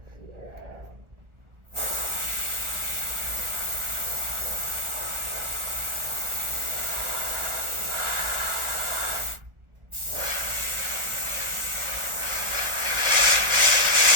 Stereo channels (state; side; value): late; left; 1.4 ms